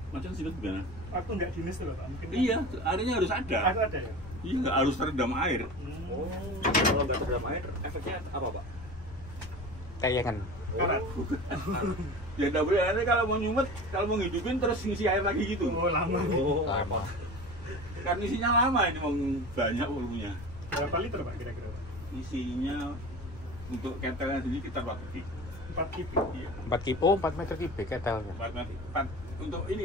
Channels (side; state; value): left; noise; rumble, 14 dB below the sound